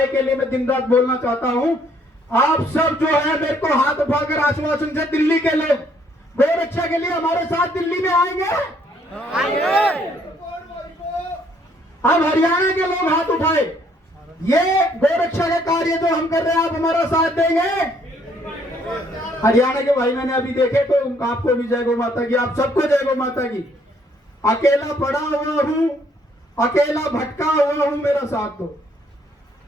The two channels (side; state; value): both; normal; correlation 0.66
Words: के लिए मैं दिन रात बोलना चाहता हूं। आप सब जो है मेरे को हाथ उठाकर आश्वासन से, दिल्ली के लोग गोरक्षा के लिए हमारे साथ दिल्ली में आएंगे। अब हरियाणा के लोग हाथ उठाए, ये गोरक्षा का कार्य जो हम कर रहे हैं आप हमारा साथ देंगे। हरियाणा के भाई मैंने अभी देखे तो आपको भी जय गौ माता की, आप सबको जय गौ माता की। अकेला पड़ा हुआ हूं, अकेला भटका हुआ हूं, मेरा साथ दो।